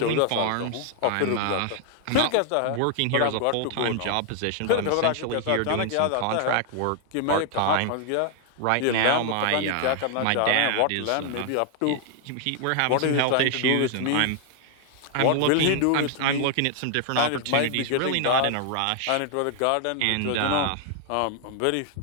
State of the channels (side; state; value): both; different; correlation 0.00